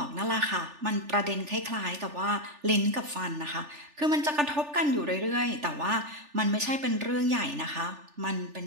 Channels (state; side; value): late; left; 3.4 ms